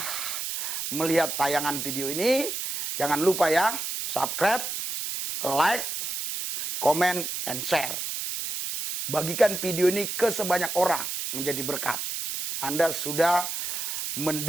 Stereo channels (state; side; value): noise; right; hiss, 4 dB below the sound